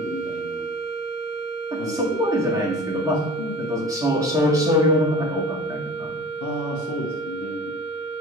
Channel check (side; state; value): both; normal; correlation 0.40